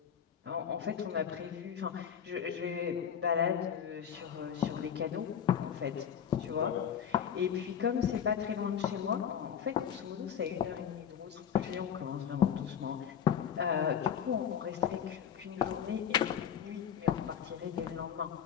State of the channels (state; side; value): quieter; right; 8.3 dB